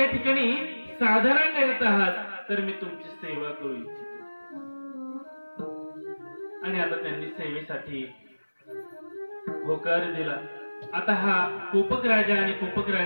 ठिकाणी साधना करीत आहात, तर मी तुमची सेवा करू इच्छितो. आणि आता त्यांनी सेवेसाठी होकार दिला. आता हा कोपक राजा आणि कोपक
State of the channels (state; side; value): inverted; both; correlation -1.00